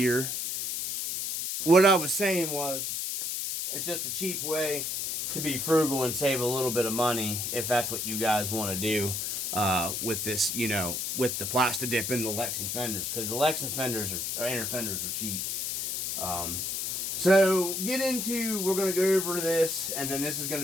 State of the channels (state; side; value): noise; left; hiss, 2 dB below the sound